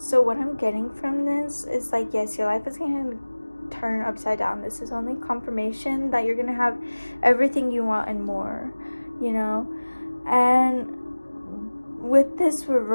what I'm getting from this is, like, yes, your life is going to turn upside down. This is only confirmation that you're going to have everything you want and more, you know? And with this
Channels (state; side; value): inverted; both; correlation -1.00